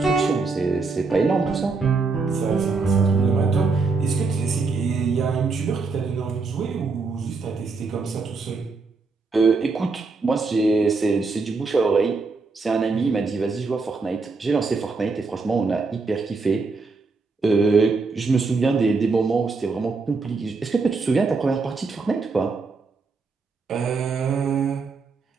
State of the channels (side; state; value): left; quieter; 4.2 dB